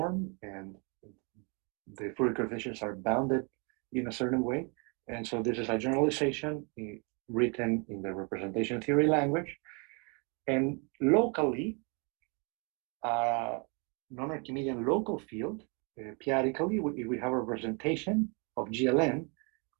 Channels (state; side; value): quieter; left; 34.3 dB